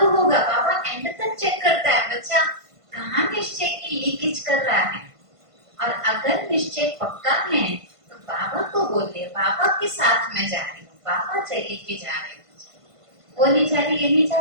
होगा, बाबा एंड तक चेक करता है बच्चा कहाँ निश्चय की लीकेज कर रहा है। और अगर निश्चय पक्का है तो बाबा को बोल दे, बाबा के साथ मैं जा रही हूँ, बाबा चले के जा रहे हूँ, वो नहीं जा रही, ये नहीं जा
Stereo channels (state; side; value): late; left; 1.5 ms